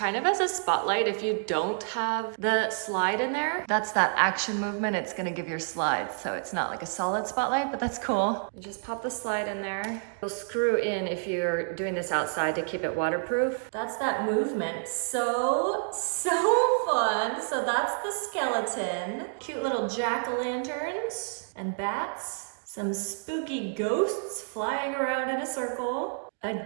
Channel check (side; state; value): left; silent; digital silence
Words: of as a spotlight if you don't have the slide in there. That's that action movement. It's gonna give your slides. So it's not like a solid spotlight, but that's cool. You just pop the slide in there. You'll screw in if you're doing this outside to keep it waterproof. That's that movement. So fun. So that's the skeleton. Cute little jack-o'-lanterns and bats. Some spooky ghosts flying around in a circle. A